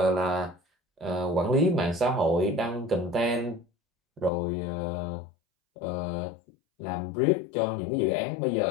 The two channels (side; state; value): right; drops out; at 4.3 s